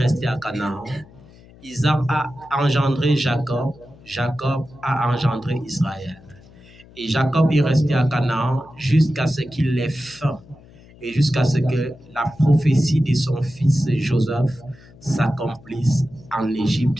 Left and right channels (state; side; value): noise; left; hum, 24 dB below the sound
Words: à Canaan. Isaac a engendré Jacob. Jacob a engendré Israël. Et Jacob est resté à Canaan jusqu'à ce qu'il ait faim et jusqu'à ce que la prophétie de son fils Joseph s'accomplisse en